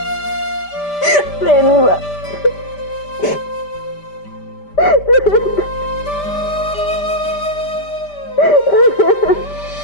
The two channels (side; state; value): right; late; 5.1 ms